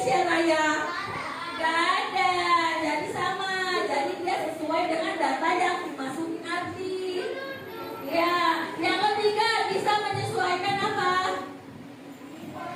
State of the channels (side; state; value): both; identical; correlation 1.00